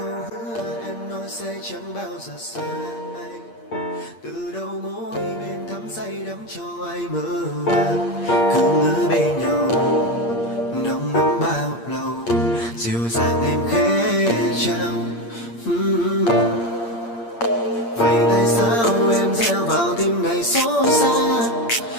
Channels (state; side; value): late; right; 8.6 ms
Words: hứa em nói sẽ chẳng bao giờ xa anh. Từ đầu môi bên thắm say đắm cho ai mơ màng. Cứ ngỡ bên nhau nồng nắm bao lâu. Dịu dàng em khẽ trao. Vậy tại sao em gieo vào tim này xót xa?